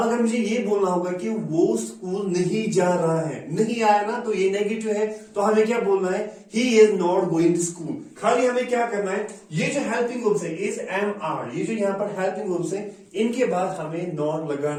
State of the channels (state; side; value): identical; both; correlation 1.00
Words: अगर मुझे ये बोलना होगा कि वो स्कूल नहीं जा रहा है, नहीं आया ना, तो ये नेगेटिव है, तो हमें क्या बोलना है, he is not going to school. खाली हमें क्या करना है, ये जो हेल्पिंग वर्ब्स है इज एम आर, ये जो यहाँ पर हेल्पिंग वर्ब्स है इनके बाद हमें नॉट